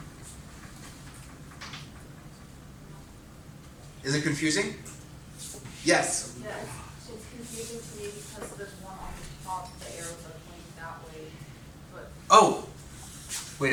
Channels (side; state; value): both; identical; correlation 1.00